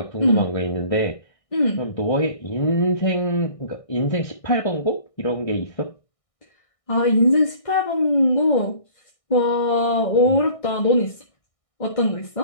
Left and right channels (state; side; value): late; right; 1.6 ms